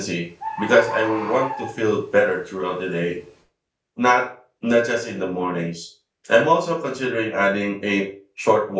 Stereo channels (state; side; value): identical; both; correlation 1.00